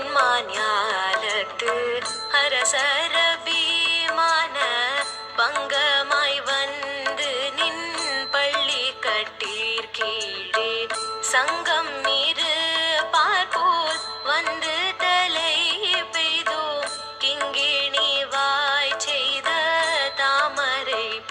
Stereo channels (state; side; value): identical; both; correlation 1.00